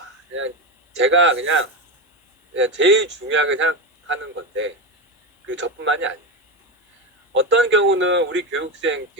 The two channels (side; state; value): both; normal; correlation 0.16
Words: 그냥 제가 그냥 제일 중요하게 생각하는 건데 그 저뿐만이 아니에요. 어떤 경우는 우리 교육생